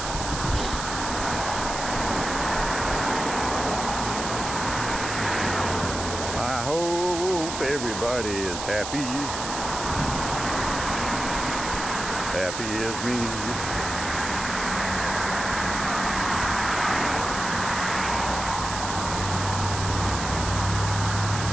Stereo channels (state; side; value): noise; right; hiss, 6 dB below the sound